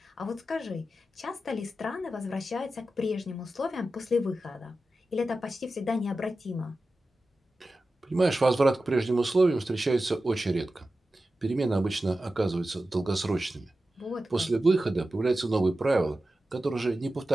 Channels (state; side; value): normal; both; correlation 0.93